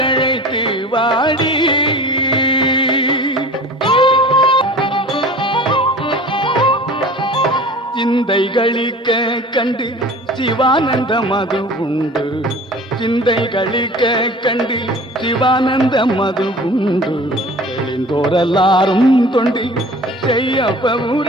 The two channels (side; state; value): both; normal; correlation 0.42